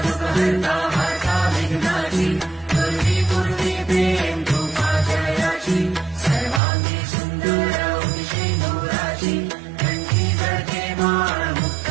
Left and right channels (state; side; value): drops out; left; at 6.6 s